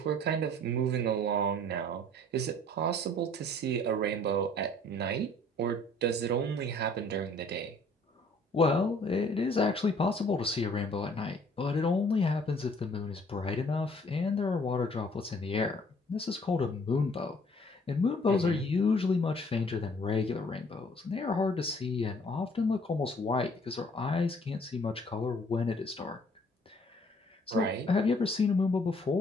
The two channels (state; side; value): normal; both; correlation 0.58